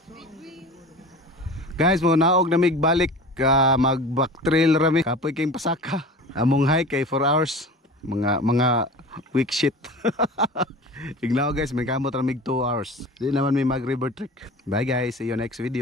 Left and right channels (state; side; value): normal; both; correlation 0.37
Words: Guys, mo naog na mig balik mag-back trail rami. Kapoy kayong pasaka. Among hike kay 4 hours. Mga weak shit. Ignaw guys, may kamot ramig 2 hours. Di naman may mag river trek. Bye guys, see you next